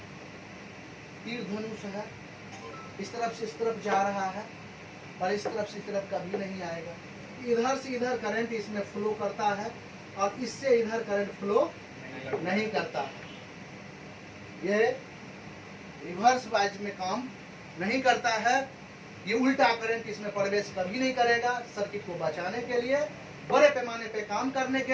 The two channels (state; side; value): identical; both; correlation 1.00